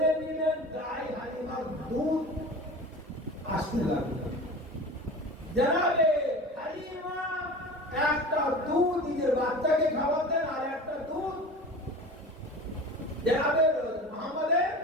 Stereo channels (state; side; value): normal; both; correlation 0.35